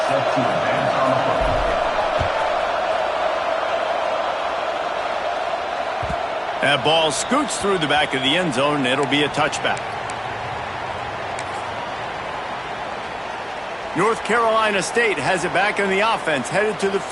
That ball scoots through the back of the end zone, and it'll be a touchback. North Carolina State has it back on the offense, headed to the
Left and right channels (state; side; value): identical; both; correlation 1.00